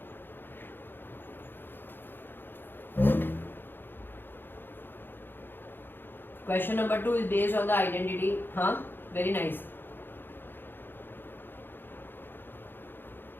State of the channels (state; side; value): late; right; 0.099 ms